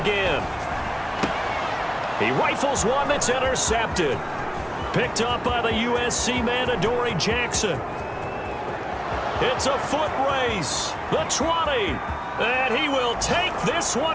He rifles one that's intercepted. Picked up by the USC man, Adoree Jackson. It's a foot race. The 20. And he will take this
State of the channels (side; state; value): both; identical; correlation 1.00